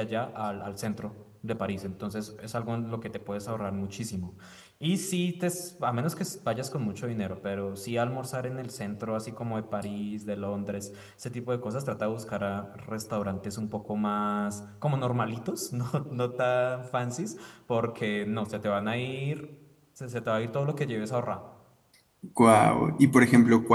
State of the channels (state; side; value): identical; both; correlation 1.00